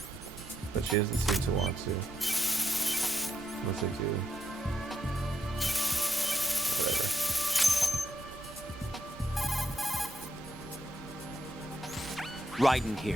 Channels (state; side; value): normal; both; correlation 0.81